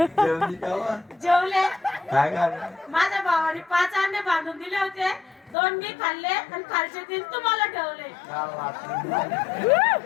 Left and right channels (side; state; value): right; drops out; at 5.6 s